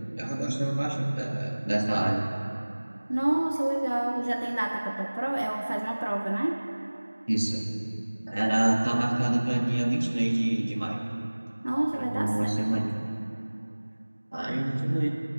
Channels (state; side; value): inverted; both; correlation -1.00